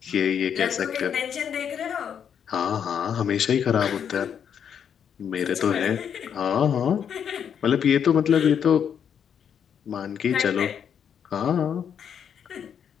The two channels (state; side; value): quieter; right; 8.1 dB